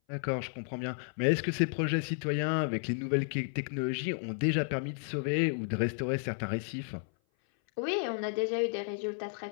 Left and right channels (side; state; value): right; silent; 56 dB below the other